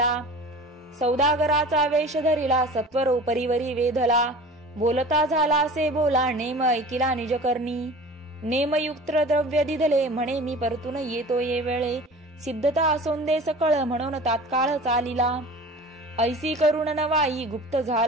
सौदागराचा वेश धरिला सत्वर उपरीवरी वेधला, बोलता झाला असे बोला नेम ऐकिला निजकर्णी, नेमयुक्त द्रव्य दिधले म्हणे मी परतून येतो ये वेळे, सिद्धता असोंदे सकळ म्हणून तात्काळ चालिला, ऐसी करुण नवाई गुप्त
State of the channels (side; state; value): both; normal; correlation 0.39